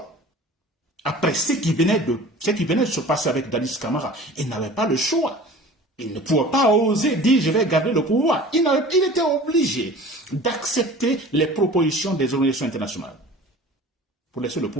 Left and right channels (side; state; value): both; normal; correlation 0.42